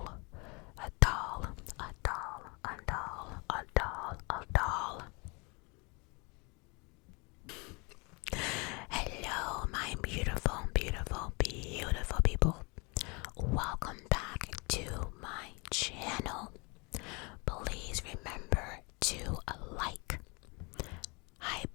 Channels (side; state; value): right; quieter; 29.5 dB